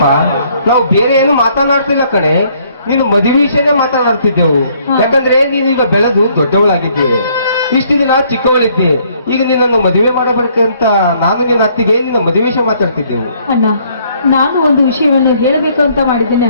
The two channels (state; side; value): inverted; both; correlation -0.65